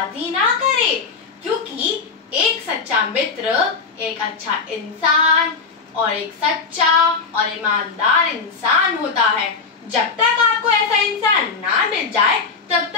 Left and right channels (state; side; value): quieter; right; 4.9 dB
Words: ना करें, क्योंकि एक सच्चा मित्र एक अच्छा इंसान और एक सच्चा और ईमानदार इंसान होता है। जब तक आपको ऐसा इंसान ना मिल जाए तब